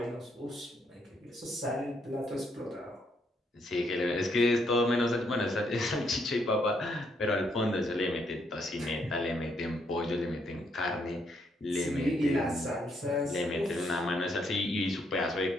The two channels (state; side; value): normal; both; correlation 0.74